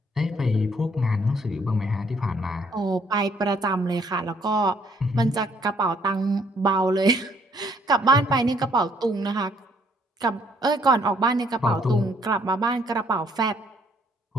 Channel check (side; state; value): both; normal; correlation 0.66